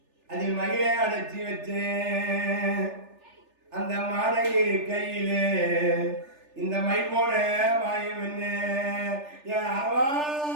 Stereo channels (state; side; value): late; left; 3.4 ms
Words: அதில் மகிழை அடைச்சி வச்சேன், அந்த மாலை கையிலே இந்த மை போன மாயம் என்ன, என் அரவா,